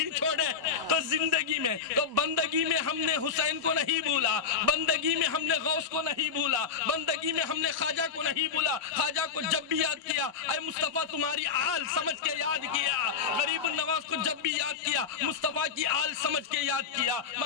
چھوڑے، تو زندگی میں تو بندگی میں ہم نے حسین کو نہیں بھولا، بندگی میں ہم نے غوث کو نہیں بھولا، بندگی میں ہم نے خواجہ کو نہیں بھولا۔ خواجہ کو جب بھی یاد کیا اے مصطفیٰ تمہاری آل سمجھ کے یاد کیا، غریب النواز کو جب بھی یاد کیا مصطفیٰ کی آل سمجھ کے یاد کیا،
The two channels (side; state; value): right; quieter; 6.1 dB